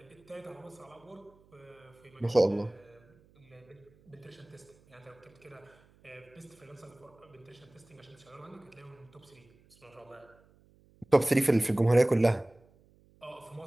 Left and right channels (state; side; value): noise; right; hum, 29 dB below the sound